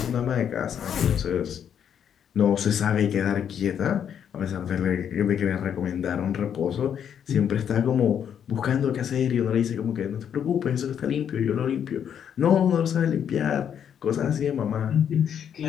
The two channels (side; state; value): right; quieter; 8.6 dB